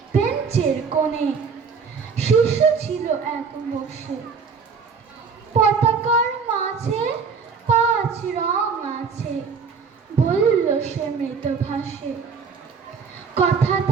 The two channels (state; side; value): quieter; left; 5.6 dB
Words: বেঞ্চের কোণে শিশু ছিল এক বসে। পতাকার মাঝে 5 রং আছে, বলল সে মৃত ভাষে।